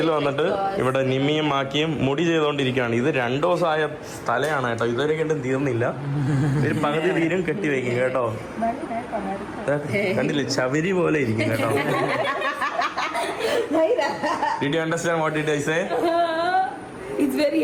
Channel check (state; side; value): identical; both; correlation 1.00